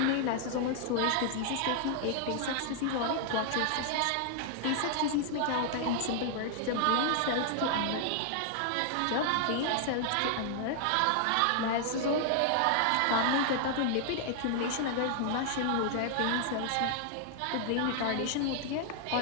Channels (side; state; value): both; different; correlation 0.00